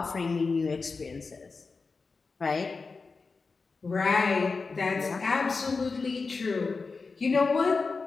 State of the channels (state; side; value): quieter; right; 4.4 dB